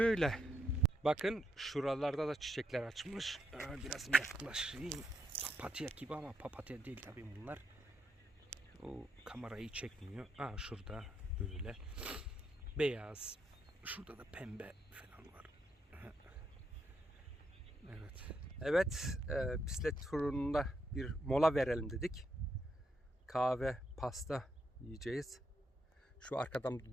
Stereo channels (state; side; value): normal; both; correlation 0.79